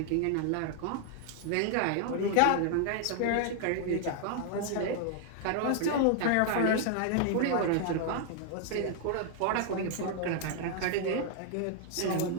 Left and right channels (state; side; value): different; both; correlation 0.00